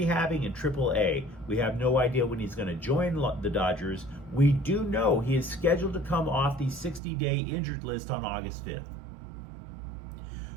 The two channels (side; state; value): left; drops out; at 7.0 s